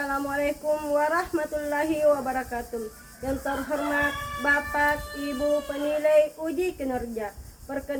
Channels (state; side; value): identical; both; correlation 1.00